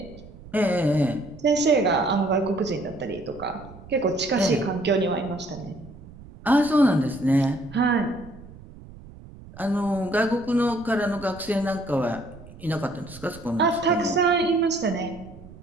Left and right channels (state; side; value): noise; right; rumble, 19 dB below the sound